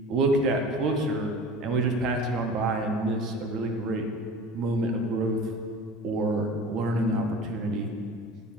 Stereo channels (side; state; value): both; normal; correlation 0.39